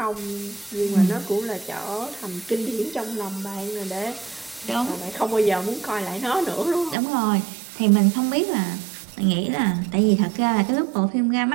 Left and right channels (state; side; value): drops out; left; at 7.0 s